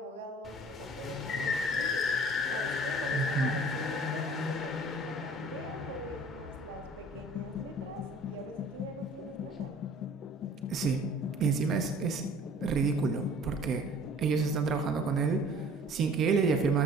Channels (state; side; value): normal; both; correlation 0.50